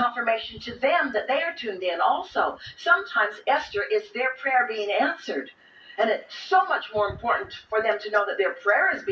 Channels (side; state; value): both; identical; correlation 1.00